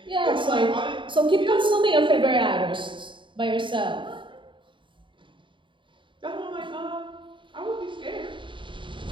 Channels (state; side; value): late; left; 0.24 ms